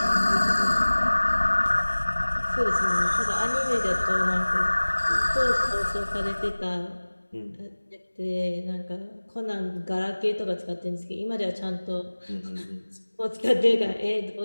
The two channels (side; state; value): both; inverted; correlation -1.00